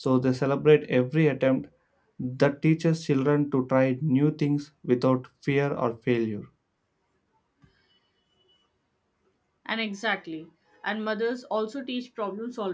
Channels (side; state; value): both; identical; correlation 1.00